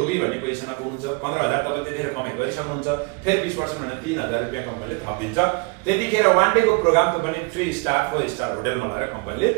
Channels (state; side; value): quieter; left; 31.3 dB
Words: भन्ने पोजिसनमा पुग्नुहुन्छ। 15,000 तपाईँले त्यतिखेर कमाइ गरिसक्नुहुन्छ, फेरि 20% भने 3,000 रुपियाँ कम्पनीले थपिदिन्छ। त्यतिखेर 1 डेको प्रोग्राम त पनि 3 स्टार 4 स्टार होटलमा लगेर कम्पनीले